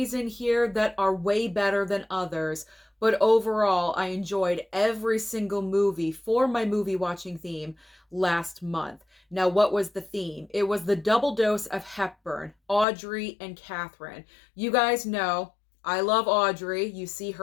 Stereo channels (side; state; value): right; drops out; at 12.9 s